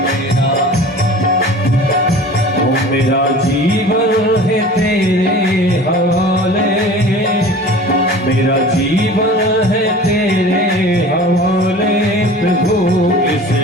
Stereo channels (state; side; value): normal; both; correlation 0.41